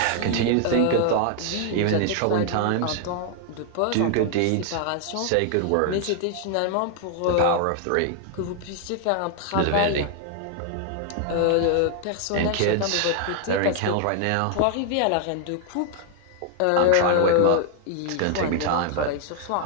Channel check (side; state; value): both; different; correlation 0.00